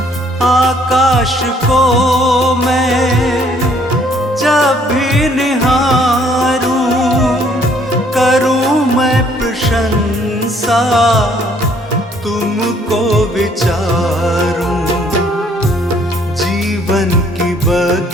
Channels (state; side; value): normal; both; correlation 0.63